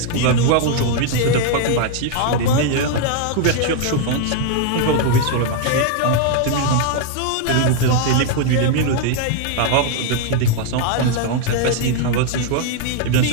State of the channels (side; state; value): both; different; correlation 0.00